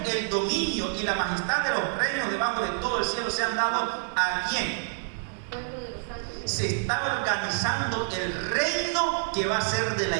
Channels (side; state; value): left; silent; 55 dB below the other